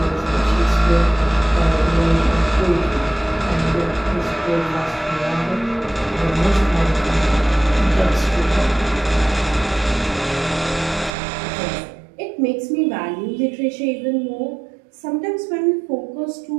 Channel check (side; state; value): left; drops out; at 11.1 s